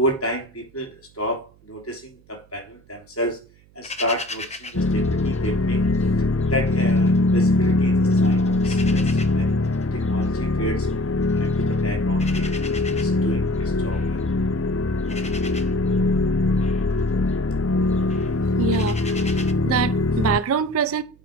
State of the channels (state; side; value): noise; right; hum, 29 dB below the sound